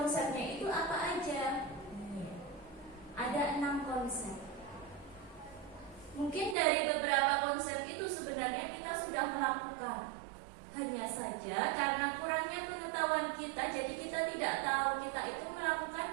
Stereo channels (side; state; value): left; drops out; at 6.6 s